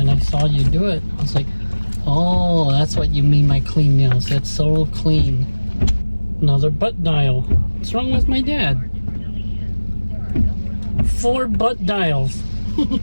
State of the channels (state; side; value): inverted; both; correlation -1.00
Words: I saw you do it. I was like, oh, that's what you mean by clean nails. It's so clean. Another butt dial. What's wrong with my dad? 4 butt dials.